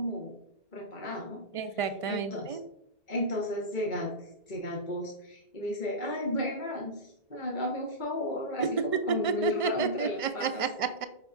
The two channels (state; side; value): late; right; 1.5 ms